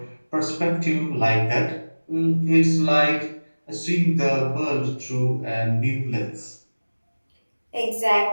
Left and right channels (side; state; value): both; inverted; correlation -1.00